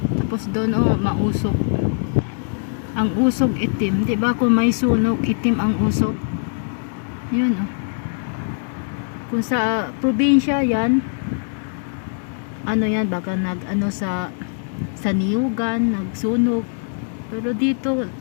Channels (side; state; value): right; silent; digital silence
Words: Tapos doon, oh, mausok. Ang usok itim. Diba kung may sunog, itim ang usok? Yun, oh. Kung sa probinsya yan, ano yan, baka nag-ano sa niyugan, nagsunog. Pero dito,